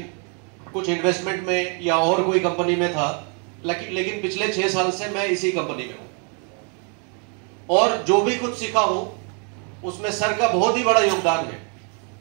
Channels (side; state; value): left; quieter; 37.2 dB